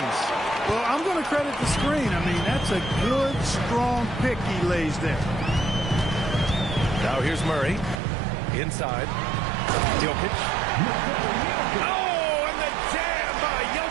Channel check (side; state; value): left; drops out; at 8.0 s